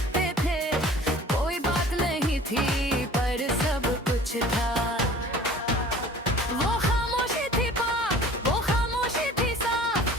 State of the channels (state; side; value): normal; both; correlation 0.46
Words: थे। कोई बात नहीं थी पर सब कुछ था। वो खामोशी थी पाक, वो खामोशी थी साफ।